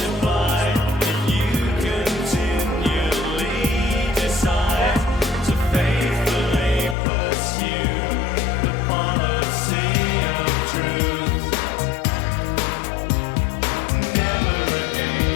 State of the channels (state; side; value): drops out; right; at 7.0 s